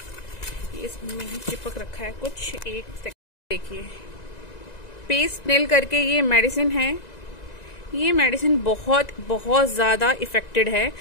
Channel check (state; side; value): late; right; 1.9 ms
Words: ये इसमें ही चिपक रखा है कुछ, एक सेकंड देखिए। पेस्ट नेल करके ये मेडिसिन है। ये मेडिसिन बहुत बहुत ज्यादा इफेक्टिव है।